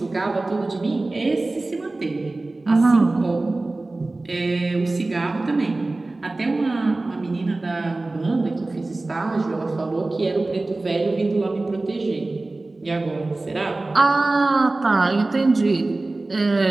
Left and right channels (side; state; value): left; quieter; 3.1 dB